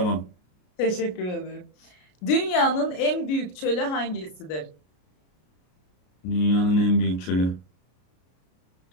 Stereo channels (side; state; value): right; late; 33 ms